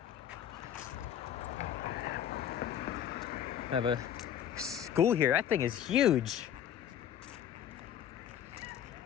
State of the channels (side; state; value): right; quieter; 9.9 dB